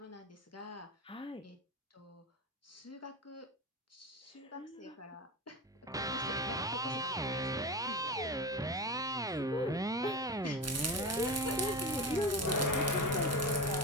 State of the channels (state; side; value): normal; both; correlation 0.24